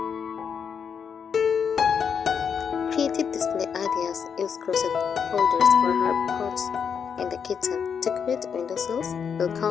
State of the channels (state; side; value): quieter; right; 6.9 dB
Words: Creative display ideas. Use crochet holders for herb pots in the kitchen. Decorate windowsills,